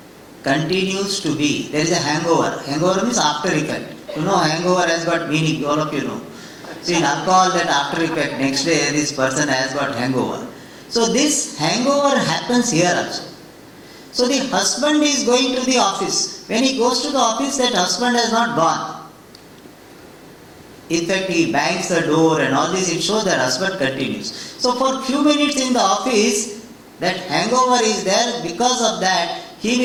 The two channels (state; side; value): identical; both; correlation 1.00